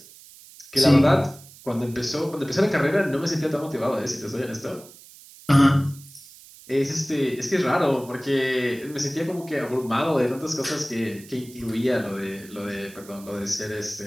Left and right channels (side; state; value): right; noise; hiss, 21 dB below the sound